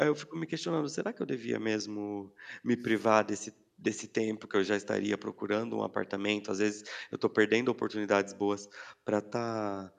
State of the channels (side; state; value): both; identical; correlation 1.00